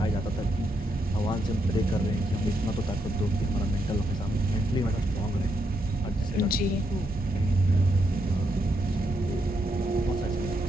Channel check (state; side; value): normal; both; correlation 0.80